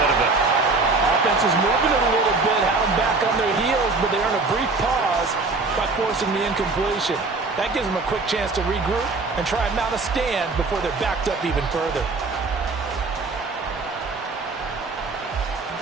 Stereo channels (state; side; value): quieter; left; 3.7 dB